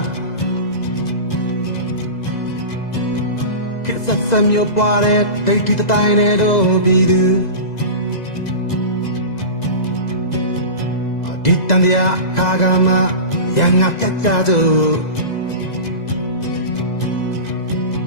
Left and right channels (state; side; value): late; right; 2.0 ms